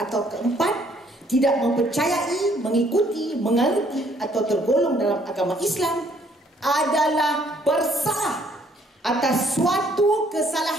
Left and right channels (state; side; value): normal; both; correlation 0.64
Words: keempat tidak mempercayai, mengikuti, menganuti atau tergolong dalam agama Islam adalah bersalah atas suatu